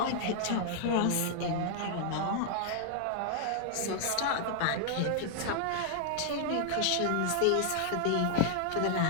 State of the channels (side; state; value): both; different; correlation -0.01